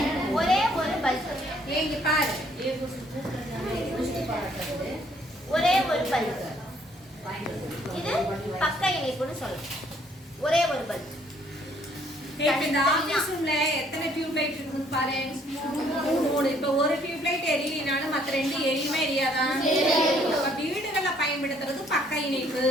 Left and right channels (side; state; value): both; normal; correlation 0.63